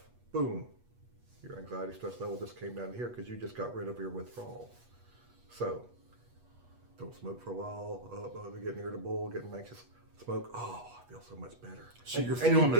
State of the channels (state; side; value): late; left; 8.3 ms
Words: boom. Your anxiety stress level just came down here because you just got rid of your withdrawal. So, don't smoke for a while, getting irritable, getting anxious. Smoke, oh, I feel so much better. So you're feeling